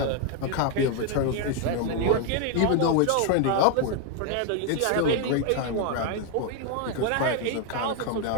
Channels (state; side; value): different; both; correlation 0.01